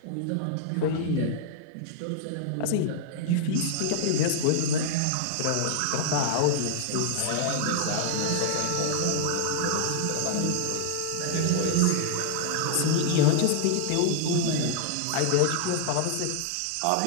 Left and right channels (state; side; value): different; both; correlation 0.00